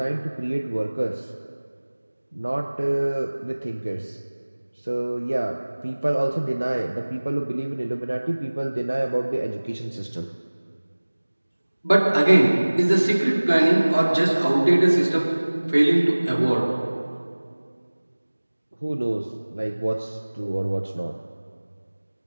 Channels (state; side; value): inverted; both; correlation -1.00